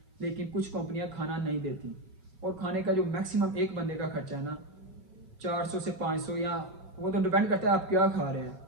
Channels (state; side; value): late; left; 5.3 ms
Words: लेकिन कुछ कंपनियां खाना नहीं देती। और खाने का जो मैक्सिमम एक बंदे का खर्चा है ना, 400 से 500, या वो तो डिपेंड करता है आप क्या खा रहे हैं।